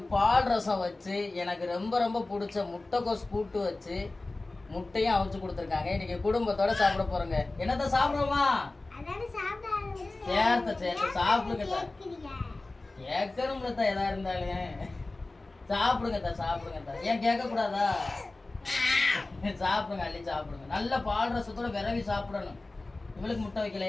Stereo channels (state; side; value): quieter; right; 3.1 dB